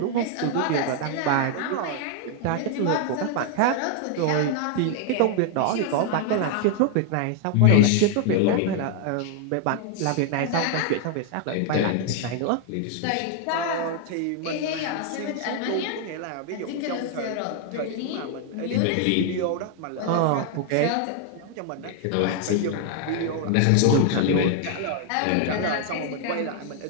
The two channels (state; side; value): different; both; correlation 0.00